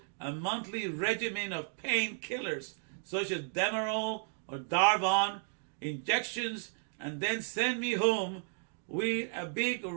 a monthly regimen of painkillers such as Demerol or Darvon injections, and then sent me home with a big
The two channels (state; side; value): silent; left; digital silence